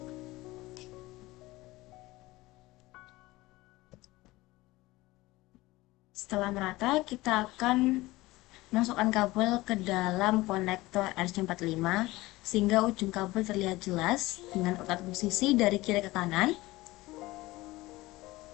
Setelah merata, kita akan masukkan kabel ke dalam konektor RJ45 sehingga ujung kabel terlihat jelas dengan urutan posisi dari kiri ke kanan.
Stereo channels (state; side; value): quieter; right; 19.5 dB